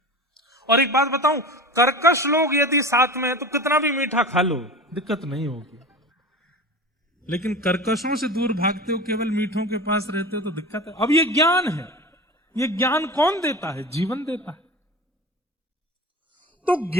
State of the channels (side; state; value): both; normal; correlation 0.32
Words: और एक बात बताऊं, कर्कश लोग यदि साथ में है तो कितना भी मीठा खा लो, दिक्कत नहीं होगी। लेकिन कर्कशों से दूर भागते हो, केवल मीठों के पास रहते हो तो दिक्कत है। अब ये ज्ञान है, ये ज्ञान कौन देता है? जीवन देता है। तो